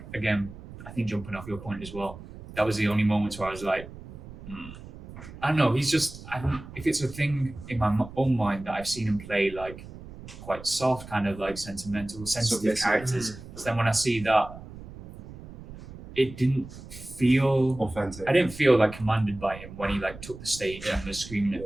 again, I think jumping off your point as well, that was the only moments where I was like, I don't know. He's just. If it's a thing in my own mind that I've seen him play like quite soft, kind of like sentimental, sensitive characters. So then when I see that, it didn't feel authentic. I didn't feel like commanded by him when he like took the stage and was screaming at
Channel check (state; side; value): noise; right; rumble, 15 dB below the sound